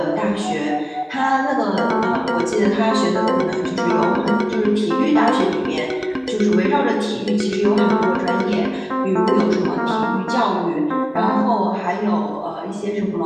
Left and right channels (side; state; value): both; identical; correlation 1.00